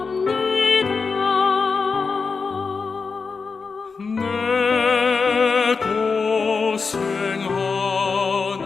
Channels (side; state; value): right; quieter; 4.8 dB